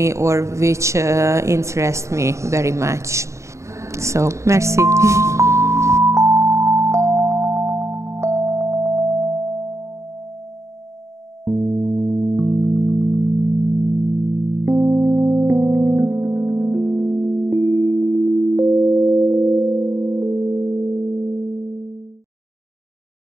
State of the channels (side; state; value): left; late; 0.14 ms